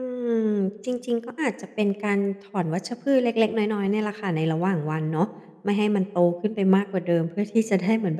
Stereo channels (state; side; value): identical; both; correlation 1.00